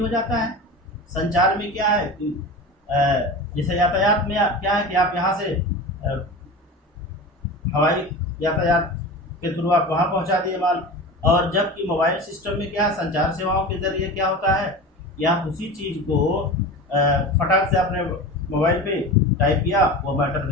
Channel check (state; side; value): normal; both; correlation 0.31